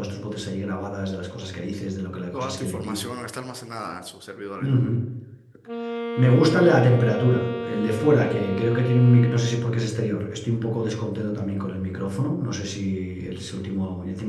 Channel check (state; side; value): identical; both; correlation 1.00